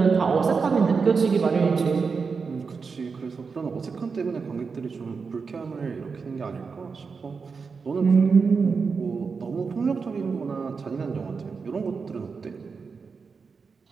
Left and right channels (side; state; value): left; quieter; 5.1 dB